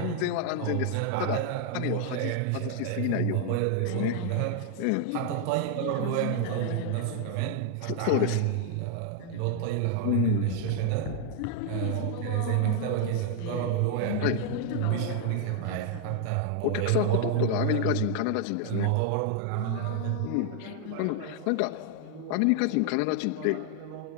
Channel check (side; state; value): both; different; correlation 0.00